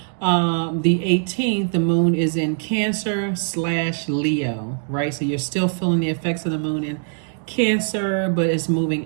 the 18th, the moon is in Cancer/Leo, right? So you're still feeling the effects of the moon in Cancer, but it's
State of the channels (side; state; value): left; silent; 64 dB below the other